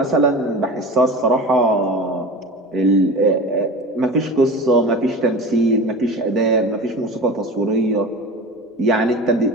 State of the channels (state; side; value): normal; both; correlation 0.33